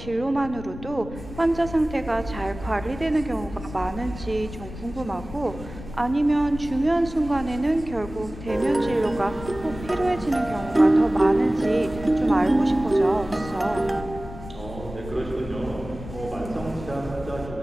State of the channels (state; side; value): noise; left; rumble, 13 dB below the sound